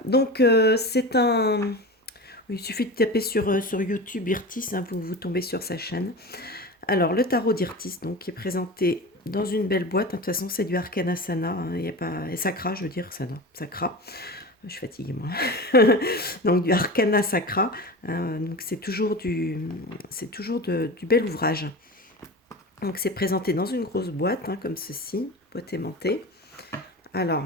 donc c'est un... Oui, il suffit de taper sur YouTube Irtis, hein, vous tombez sur sa chaîne. Alors le tarot d'Irtis, donc, qui est présenté dans une belle boîte. De toute façon, c'est du Arcana Sana, hein, il y a pas... et Sacra, je veux dire, Sana, Sacra. Je suis fatiguée, moi. Donc du Arcana Sacra, hein, donc c'est toujours du bel ouvrage. Donc c'est présenté dans une grosse boîte, hein, comme ceci, boîte aimantée. Alors,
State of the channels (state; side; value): normal; both; correlation 0.29